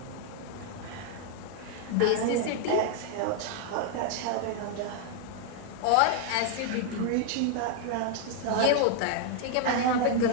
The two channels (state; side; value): different; both; correlation 0.00